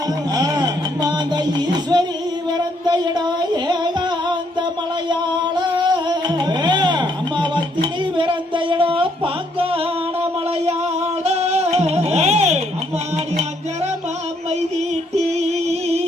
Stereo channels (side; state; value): both; normal; correlation 0.71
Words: மாத ஈஸ்வரி பிறந்த இடம் ஏகாந்த மலையாள அம்மாவத்தினி பிறந்த இடம் பாங்கான மலையாள அம்மாடி அஞ்சரமா மைதீட்டி